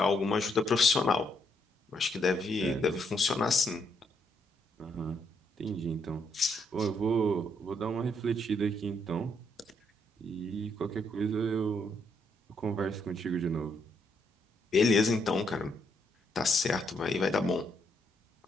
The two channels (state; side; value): normal; both; correlation 0.74